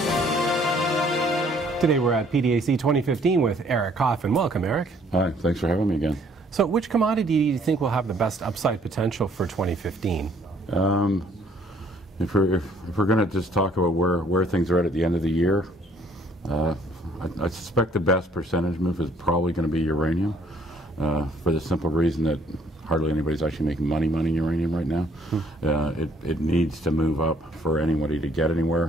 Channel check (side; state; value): both; normal; correlation 0.62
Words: Today we're at PDAC 2015 with Eric Coffin. Welcome, Eric. Hi, thanks for having me again. So which commodity do you think will have the best upside potential for 2015? If we're going to just talk about where things are at the end of the year, I suspect the best percentage move is probably going to be uranium, for the simple reason that hardly anybody's actually making money in uranium right now. It needs to move up for anybody to get